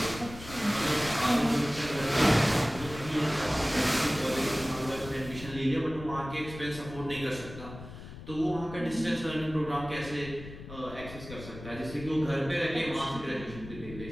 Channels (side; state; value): left; noise; rumble, 13 dB below the sound